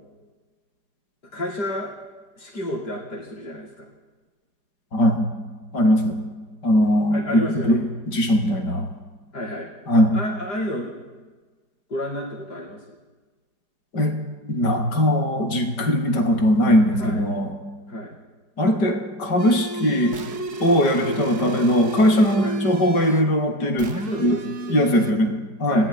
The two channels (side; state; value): right; late; 4.9 ms